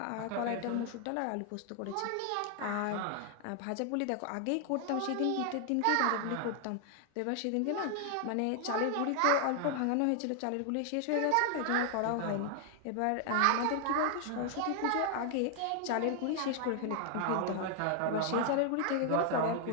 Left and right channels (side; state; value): both; different; correlation 0.00